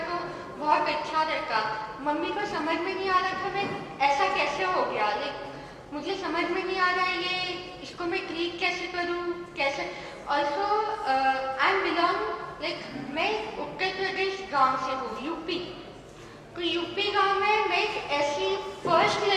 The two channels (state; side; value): identical; both; correlation 1.00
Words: तो बहुत अच्छा रहता। मम्मी को समझ में नहीं आ रहा था मैं ऐसा कैसे हो गया, मुझे समझ में नहीं आ रहा है ये, इसको मैं ट्रीट कैसे करूँ, कैसे। ऑल्सो आई एम बिलोंग मैं उत्तर प्रदेश गांव से हूँ, यूपी। तो यूपी गांव में मैं एक ऐसी फर्स्ट